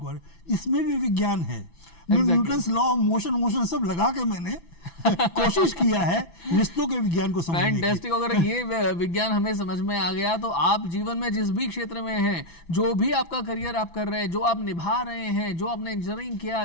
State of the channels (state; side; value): late; right; 6.0 ms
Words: बारे में, इसमें भी विज्ञान है। न्यूटन्स लॉ ऑफ मोशन सब लगा के मैंने कोशिश किया है रिश्तों के विज्ञान को समझने की। फैंटास्टिक। अगर ये विज्ञान हमें समझ में आ गया तो आप जीवन में जिस भी क्षेत्र में हैं, जो भी आपका करियर आप कर रहे हैं, जो आप निभा रहे हैं, जो आपने इंजीनियरिंग किया,